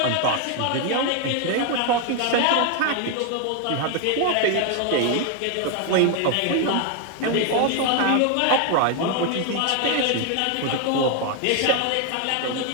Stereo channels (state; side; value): different; both; correlation 0.01